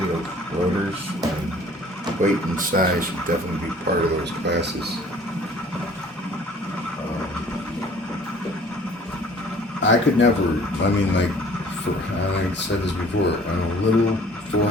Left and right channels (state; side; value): normal; both; correlation 0.52